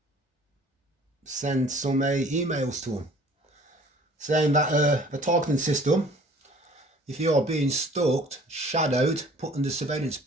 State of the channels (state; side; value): normal; both; correlation 0.52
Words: send some emails to them saying that the targeting system, if you are being stalked, shadowed, put under surveillance